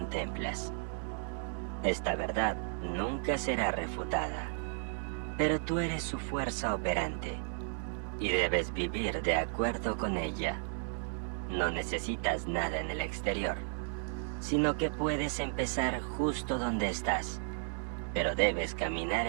Esta verdad nunca será refutada, pero tú eres su fuerza operante y debes vivir de acuerdo con ella. No necesitas nada en el exterior, sino que puedes empezar justo donde estás, pero debes caminar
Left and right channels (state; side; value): silent; left; 55 dB below the other